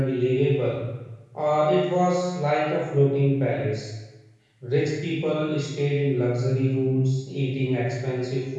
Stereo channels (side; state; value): both; identical; correlation 1.00